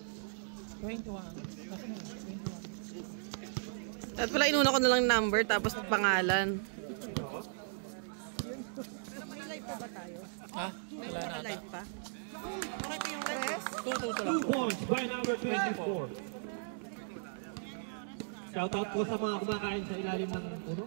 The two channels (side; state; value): left; silent; digital silence